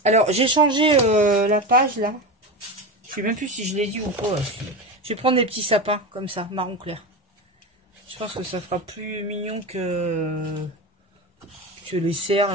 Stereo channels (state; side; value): normal; both; correlation 0.22